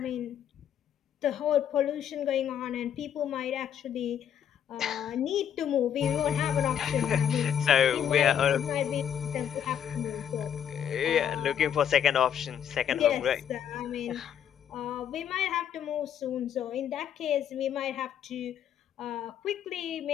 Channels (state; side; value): quieter; right; 9.2 dB